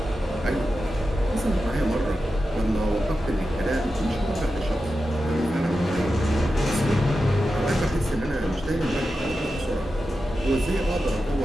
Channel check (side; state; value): both; normal; correlation 0.91